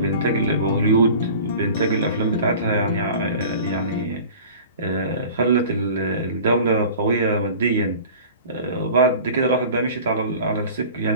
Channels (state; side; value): inverted; both; correlation -0.41